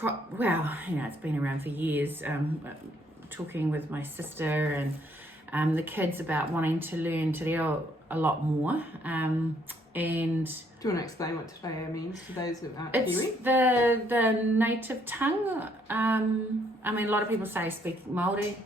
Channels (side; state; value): both; normal; correlation 0.68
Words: been around for years. Talking with my sister and the kids about wanting to learn te reo a lot more. And do you want to explain what te reo means to those that aren't it's Kiwi? the native tongue. A lot of people say speak Māori.